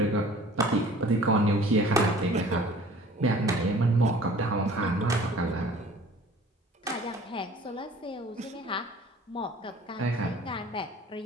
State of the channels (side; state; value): both; normal; correlation 0.48